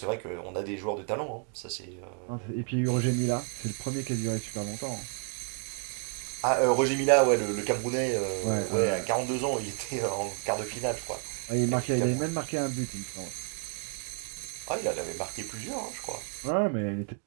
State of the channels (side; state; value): left; quieter; 39.0 dB